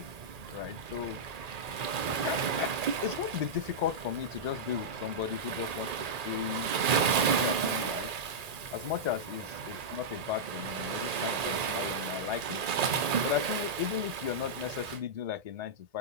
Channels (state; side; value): late; left; 1.8 ms